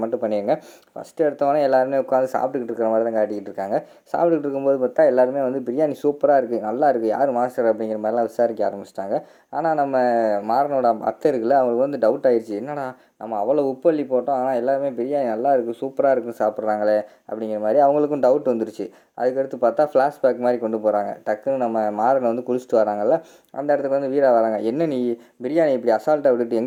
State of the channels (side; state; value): both; identical; correlation 1.00